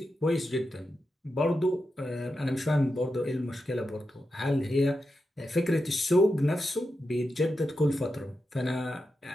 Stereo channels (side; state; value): both; normal; correlation 0.88